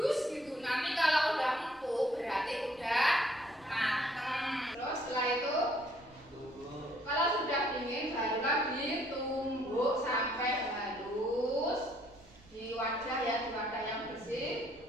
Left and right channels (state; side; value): noise; right; rumble, 26 dB below the sound